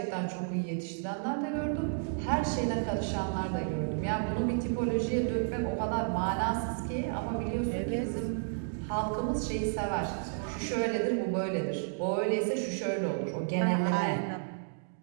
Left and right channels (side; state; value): left; silent; digital silence